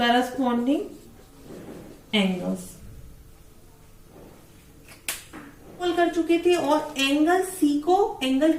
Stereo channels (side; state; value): both; identical; correlation 1.00